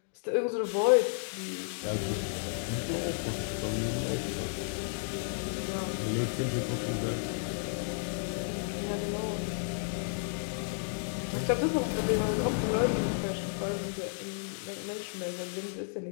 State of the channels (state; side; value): silent; right; digital silence